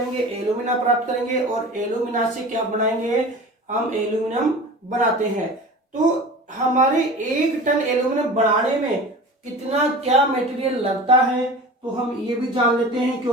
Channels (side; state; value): both; normal; correlation 0.36